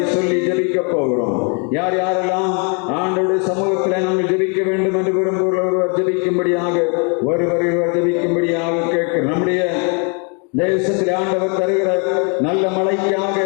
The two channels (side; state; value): right; quieter; 37.3 dB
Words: சொல்லி ஜெபிக்க போகிறோம். யார் யாரெல்லாம் ஆண்டவருடைய சமூகத்திலே நாங்கள் ஜெபிக்க வேண்டும் என்று விரும்புகிறவர் ஜெபிக்கும்படியாக ஒருவர் ஜெபிக்கும்படியாக கேட்கிறோம். நம்முடைய தேசத்தில் ஆண்டவர் தருகிற நல்ல மழைக்காக,